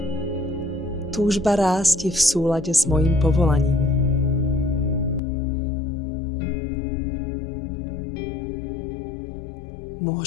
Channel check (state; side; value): drops out; right; at 5.2 s